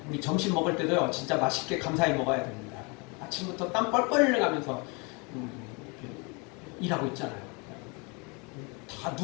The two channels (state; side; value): quieter; right; 30.8 dB